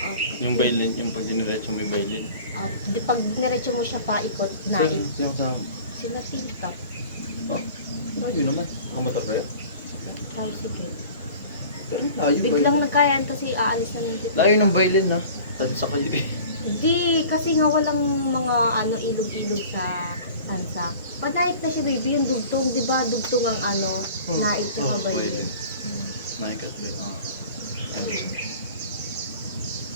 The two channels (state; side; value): inverted; both; correlation -0.44